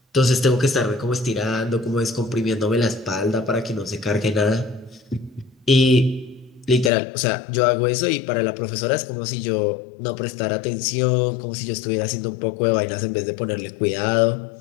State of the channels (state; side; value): drops out; right; at 6.9 s